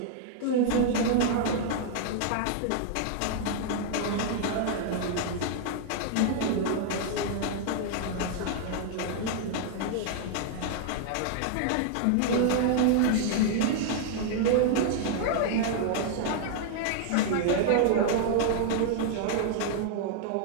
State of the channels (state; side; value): different; both; correlation 0.00